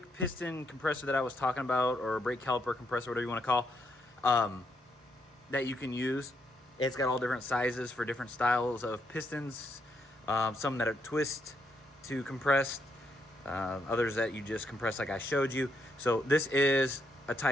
piston compressor that I was talking about, or brake caliper compressor, whatever you want to call. that you can use. It's got all different sizes for different styles of pistons, some that are twist to compressed, others that you just compress like I showed you. So this is a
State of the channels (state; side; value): normal; both; correlation 0.77